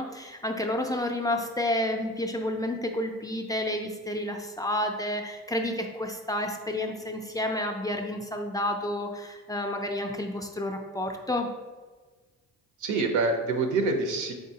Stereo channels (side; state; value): both; normal; correlation 0.32